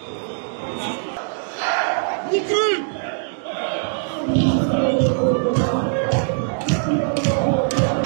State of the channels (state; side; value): silent; left; digital silence